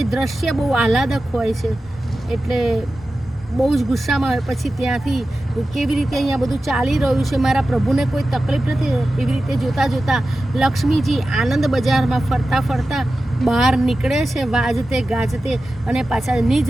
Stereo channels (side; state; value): both; normal; correlation 0.94